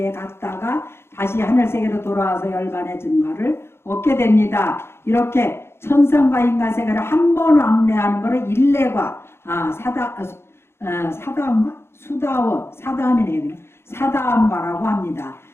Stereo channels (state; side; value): late; right; 0.12 ms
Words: 갔다가 다시 하늘 세계로 돌아와서 열반의 증가를 얻게 됩니다. 이렇게 천상과 인간 세계를 한 번 왕래하는 것을 일례과 사다함가? 수다원, 사다함이네요. 사다함가라고 합니다.